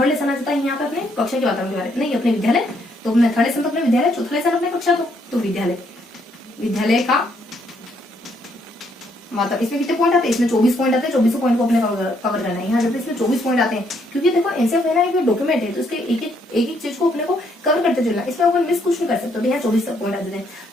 लेसन आ जाता है यहाँ पे अपने कक्षा के वातावरण के बारे में, नहीं अपने विद्यालय। तो अपने थर्ड लेसन तो अपने विद्यालय, चौथा लेसन अपने कक्षा, तो विद्यालय का मतलब इसमें कितने पॉइंट आते हैं, इसमें 24 पॉइंट आते हैं। 24 पॉइंट को अपने कवर करना है। यहाँ जाते इसमें 24 पॉइंट आते हैं, क्योंकि देखो एनसीएफ है ना एक डॉक्यूमेंट है, तो इसके एक चीज को अपने को कवर करते चलना, इसमें अपन मिस कुछ नहीं कर सकते। तो यहाँ 24 पॉइंट आ जाते हैं।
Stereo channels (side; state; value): both; normal; correlation 0.71